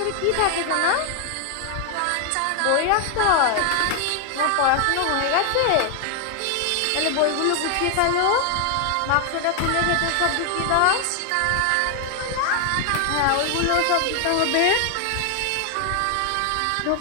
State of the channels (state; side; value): different; both; correlation 0.00